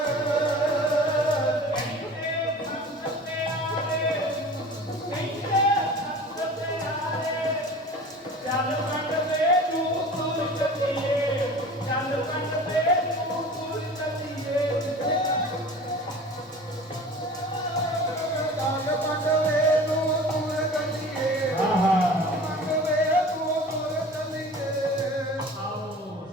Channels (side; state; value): both; normal; correlation 0.40